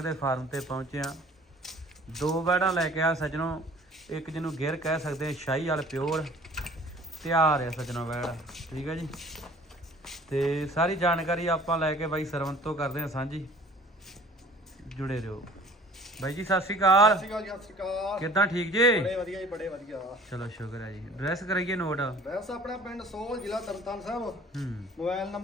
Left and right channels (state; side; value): normal; both; correlation 0.50